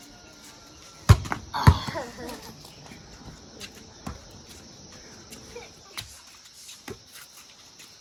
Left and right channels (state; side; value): identical; both; correlation 1.00